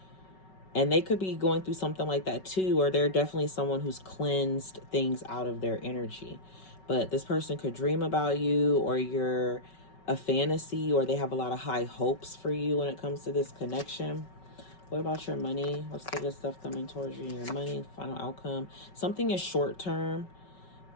And they could be going through something like that too, or they're definitely someone who's cleansed things out of their energy. But this person could dream about you, or you're a fantasy, or they have a lot of high hopes for you when it comes to this connection. What about your money? What's the good stuff coming towards you in your money? Final outcome. Something is short term.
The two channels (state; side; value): late; right; 5.3 ms